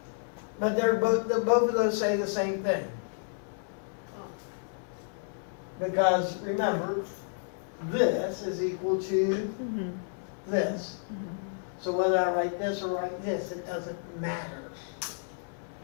But they're both of those say the same thing. Because remember, this is equal to Mm-hmm. this. So whether I write this or write this, it doesn't matter.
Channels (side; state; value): right; silent; digital silence